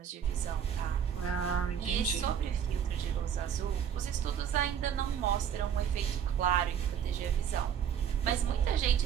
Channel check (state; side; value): quieter; left; 8.5 dB